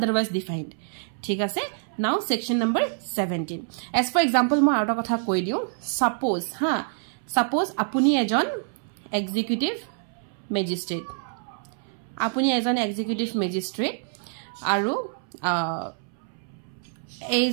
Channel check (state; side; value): silent; left; 61 dB below the other